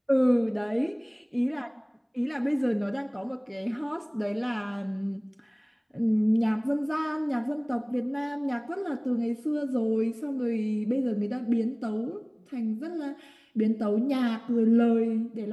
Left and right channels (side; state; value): both; identical; correlation 1.00